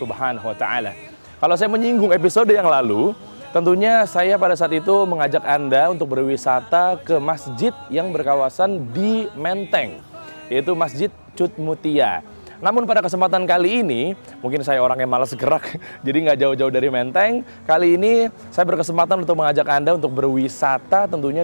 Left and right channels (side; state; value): both; inverted; correlation -1.00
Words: wa Ta'ala. Kalau saya menyinggung episode yang lalu, tentunya saya pada saat itu mengajak Anda untuk berwisata ke masjid yang berkawasan di Menteng, yaitu Masjid Cut Mutia. Namun pada kesempatan kali ini, mungkin saya orang yang malas gerak, jadi nggak jauh-jauh dari Menteng. Kali ini saya berkesempatan untuk mengajak Anda untuk berwisata